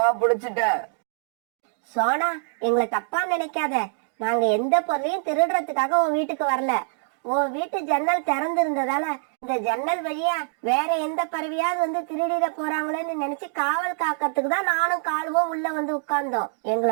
பிடிச்சிட்டேன். சோனா, எங்களை தப்பா நினைக்காத. நாங்க எந்த பொருளையும் திருடுறதுக்காக உன் வீட்டுக்கு வரல. உன் வீட்டு ஜன்னல் திறந்து இருந்ததால இந்த ஜன்னல் வழியா வேற எந்த பறவையாவது வந்து திருடிட போறாங்களேன்னு நினைச்சு காவல் காக்கிறதுக்கு தான் நானும் காலுவும் உள்ள வந்து உட்கார்ந்தோம்.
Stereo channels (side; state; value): left; silent; digital silence